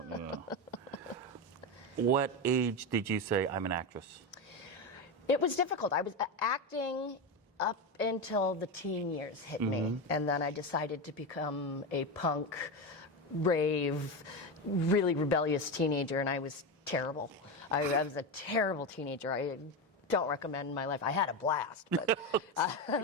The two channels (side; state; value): both; normal; correlation 0.16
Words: You know. What age did you say, I'm an actress? It was difficult. I was acting up until the teen years hit me. And then I decided to become a punk, rave, really rebellious teenager, and I was terrible. I was a terrible teenager. I don't recommend my life. I had a blast, but I